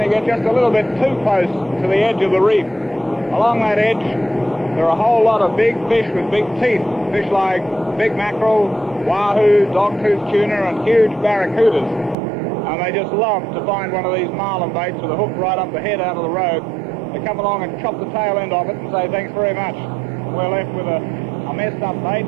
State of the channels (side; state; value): left; drops out; at 12.2 s